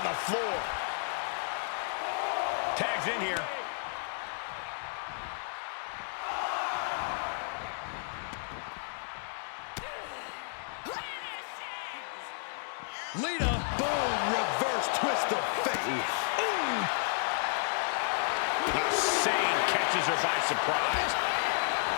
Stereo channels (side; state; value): right; silent; digital silence